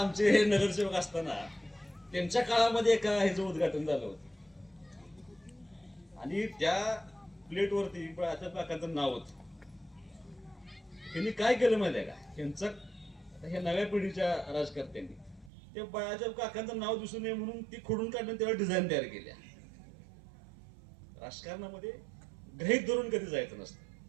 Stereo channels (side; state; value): left; drops out; at 15.5 s